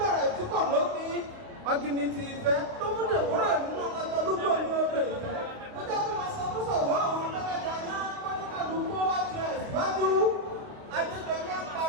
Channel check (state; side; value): late; left; 29 ms